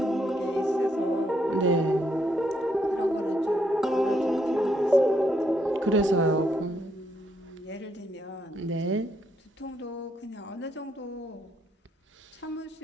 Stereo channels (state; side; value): normal; both; correlation 0.75